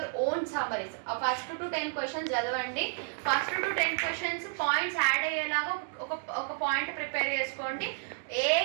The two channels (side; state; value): left; silent; digital silence